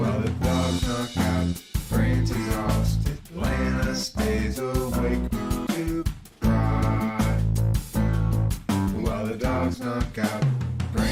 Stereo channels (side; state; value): both; identical; correlation 1.00